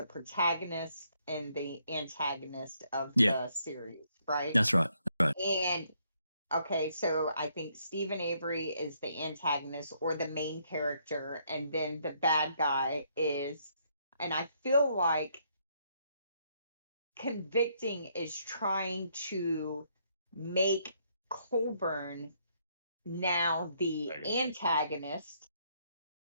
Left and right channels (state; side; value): inverted; both; correlation -0.71